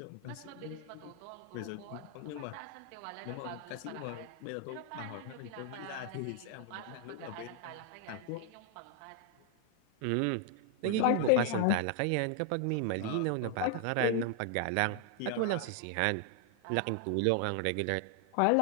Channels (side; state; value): both; different; correlation 0.00